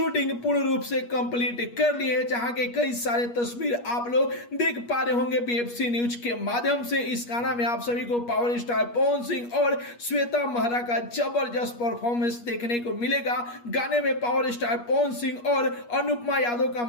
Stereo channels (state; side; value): late; right; 8.4 ms